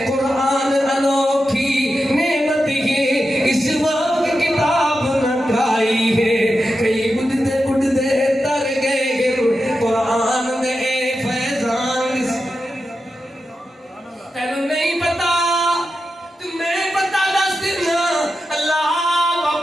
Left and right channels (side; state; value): both; normal; correlation 0.90